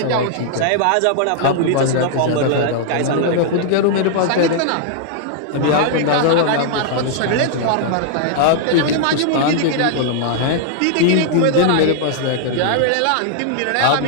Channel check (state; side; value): different; both; correlation -0.01